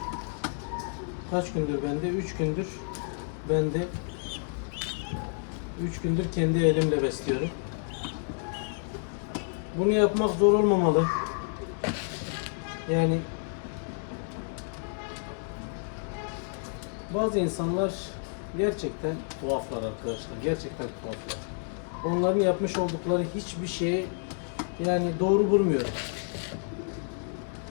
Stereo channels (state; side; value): silent; right; 58 dB below the other